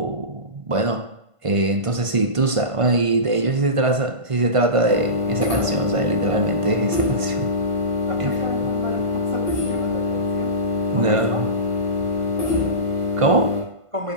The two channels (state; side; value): late; left; 1.5 ms